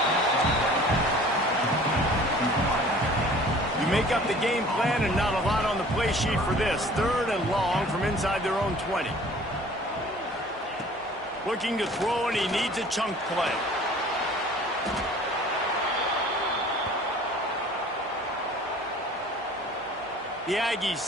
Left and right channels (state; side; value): normal; both; correlation 0.49